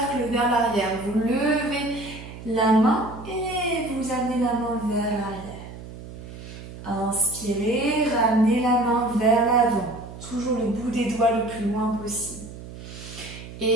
vers l'arrière. Vous levez la main et vous amenez la main vers l'arrière. Inspirez, ramenez la main vers l'avant. Toujours le bout des doigts le plus loin possible.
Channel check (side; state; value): right; noise; hum, 13 dB below the sound